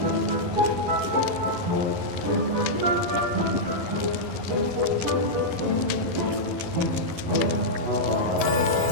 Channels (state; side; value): late; left; 11 ms